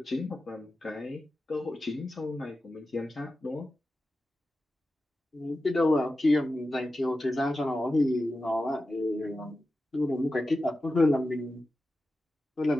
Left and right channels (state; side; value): normal; both; correlation 0.93